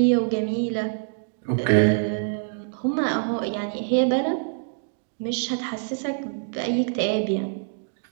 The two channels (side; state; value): left; silent; digital silence